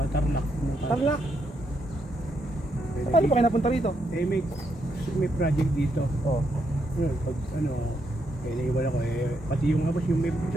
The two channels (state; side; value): normal; both; correlation 0.78